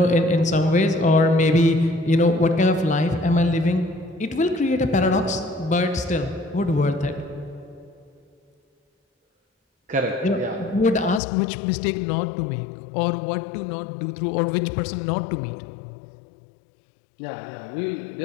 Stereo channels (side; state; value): right; drops out; at 11.2 s